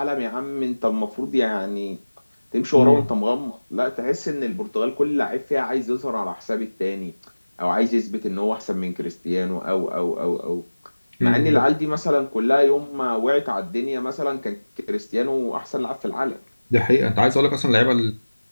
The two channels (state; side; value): inverted; both; correlation -1.00